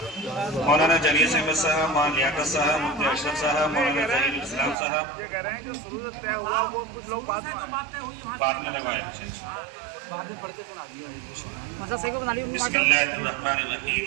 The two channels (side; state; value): left; drops out; at 4.8 s